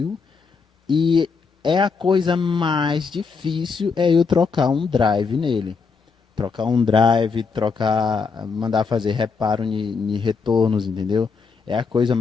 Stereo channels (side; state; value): right; quieter; 5.1 dB